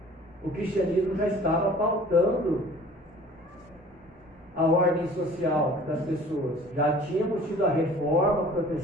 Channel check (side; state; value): both; normal; correlation 0.48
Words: o cristianismo já estava pautando a ordem social das pessoas. Já tínhamos tido a reforma